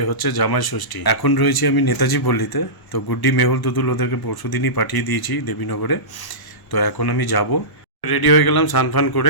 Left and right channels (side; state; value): right; late; 1.0 ms